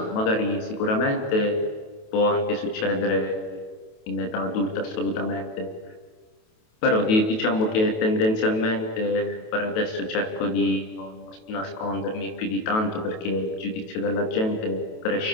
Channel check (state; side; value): late; right; 28 ms